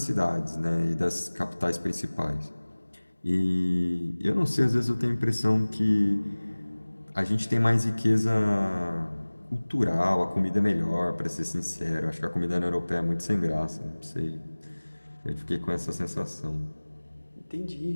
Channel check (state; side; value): inverted; both; correlation -1.00